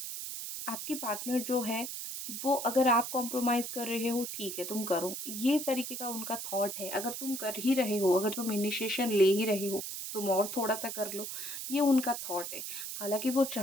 आपके पार्टनर जो है, वो अगर आप कॉम्प्रोमाइज़ कर रहे हो, ठीक है, तुम करो। ये तरीके का उनका थॉट है। अगर तुम कर ही रहे हो, अगर तुम इनिशिएशन ले ही रहे हो, तुम और थोड़ा-सा कर लो, ये उनका थॉट है। हालाँकि वो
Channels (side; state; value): right; noise; hiss, 6 dB below the sound